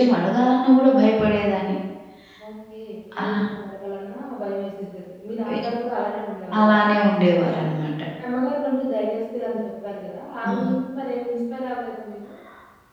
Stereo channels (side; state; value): both; identical; correlation 1.00